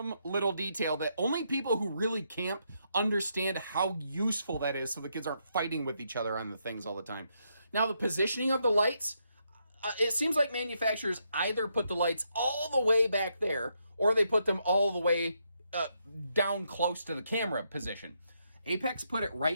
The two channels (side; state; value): both; inverted; correlation -0.78